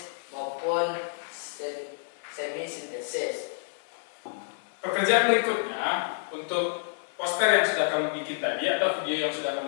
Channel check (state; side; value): silent; right; 59 dB below the other